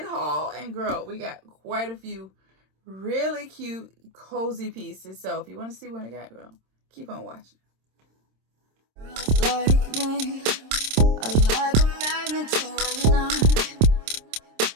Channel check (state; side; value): late; left; 26 ms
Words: haul, and girl, we got quite a few really cute cozy pieces. So if you want to see what I got, girl, keep on watching. Like me, I like a magnet to a knife.